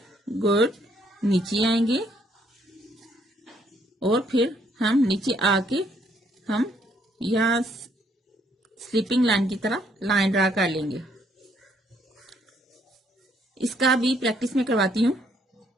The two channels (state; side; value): normal; both; correlation 0.69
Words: गुड, नीचे आएंगे और फिर हम नीचे आके हम यहां स्लीपिंग लाइन की तरह लाइन ड्रा कर लेंगे। इसका भी प्रैक्टिस में करवाती हूँ,